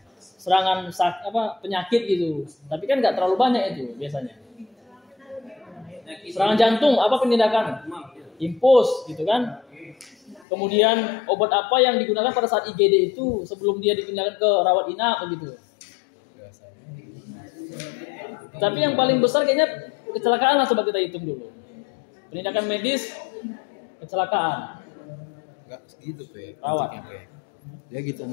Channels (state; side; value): drops out; right; at 10.5 s